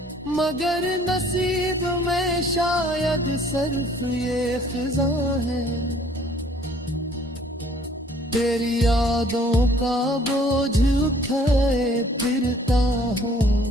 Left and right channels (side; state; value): both; normal; correlation 0.58